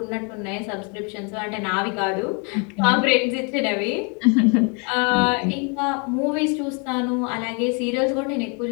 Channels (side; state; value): right; quieter; 35.1 dB